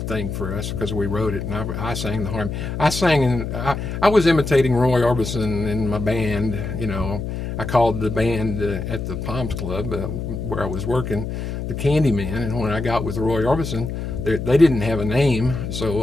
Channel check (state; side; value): noise; left; hum, 5 dB below the sound